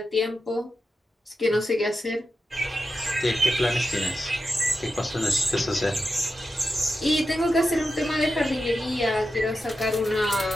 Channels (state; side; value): normal; both; correlation 0.90